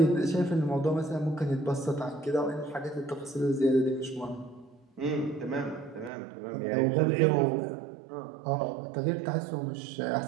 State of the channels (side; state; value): left; drops out; at 6.1 s